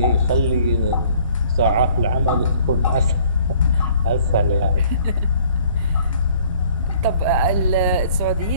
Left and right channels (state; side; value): inverted; both; correlation -0.57